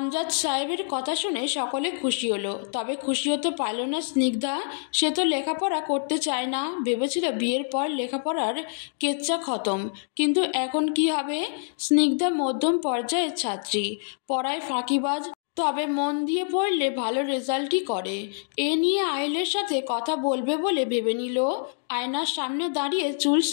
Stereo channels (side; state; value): right; silent; digital silence